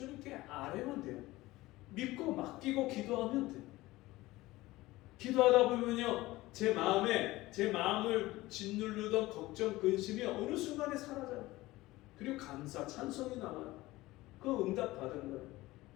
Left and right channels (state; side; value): quieter; right; 18.7 dB